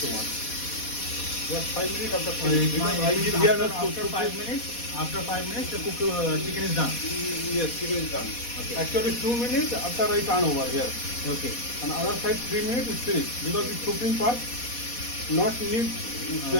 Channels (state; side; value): late; right; 4.1 ms